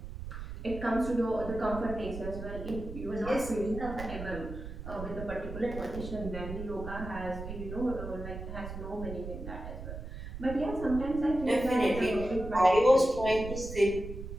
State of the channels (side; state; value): right; noise; rumble, 9 dB below the sound